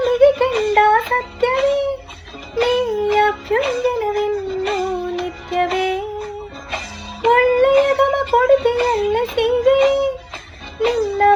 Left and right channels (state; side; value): identical; both; correlation 1.00